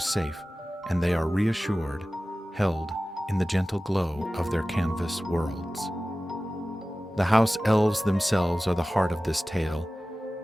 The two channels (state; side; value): normal; both; correlation 0.96